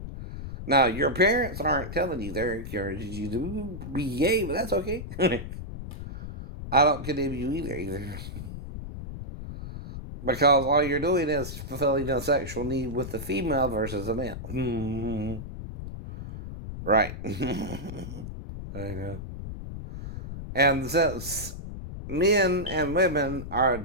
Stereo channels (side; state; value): left; noise; rumble, 9 dB below the sound